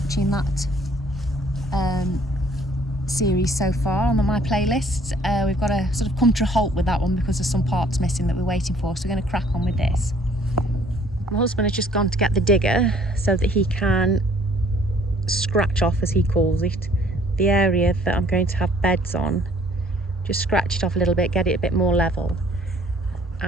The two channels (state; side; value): normal; both; correlation 0.59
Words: that series so far on my playlists. We've got to sort of come to a halt with that one because there's some parts missing that we're waiting for, so we're going to crack on with this. My husband has just gone to get the digger so that he can scratch off, as he calls it, the area that I'm going to have beds on. Just scratch it off a little bit, get it a bit more level,